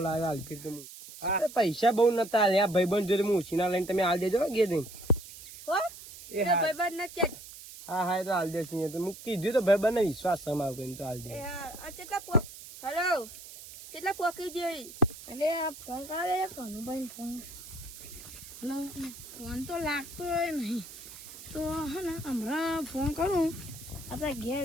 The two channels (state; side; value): noise; right; hiss, 15 dB below the sound